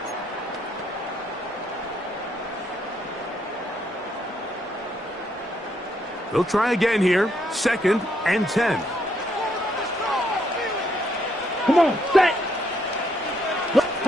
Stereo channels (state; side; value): normal; both; correlation 0.73